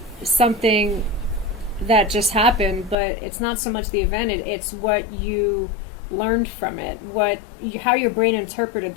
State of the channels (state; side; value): drops out; right; at 3.0 s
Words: something that just happened, but it's not so much the event, it's what you learned from it, how your brain interpreted